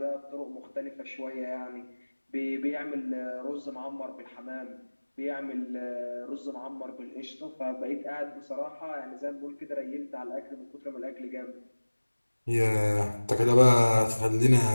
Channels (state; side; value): inverted; both; correlation -1.00